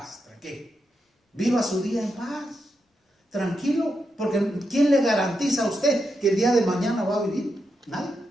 tranquilo. Viva su día en paz, tranquilo. Porque ¿quién le garantiza a usted que el día de mañana va a vivir? Nadie.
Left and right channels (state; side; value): normal; both; correlation 0.85